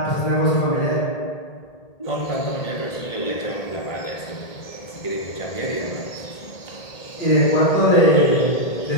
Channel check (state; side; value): late; right; 1.8 ms